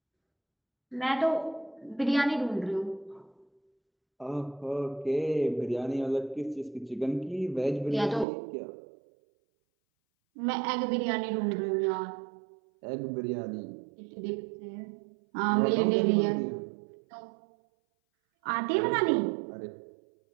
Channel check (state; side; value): drops out; left; at 8.2 s